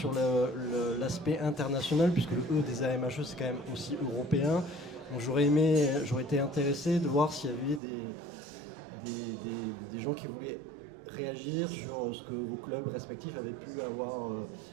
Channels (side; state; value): left; drops out; at 7.8 s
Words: l'aspect international, puisque le E des AMHE c'est quand même aussi européen. Donc j'aurais été intéressé de voir s'il y avait des gens qui voulaient réagir sur ce que vos clubs respectifs avaient pu avoir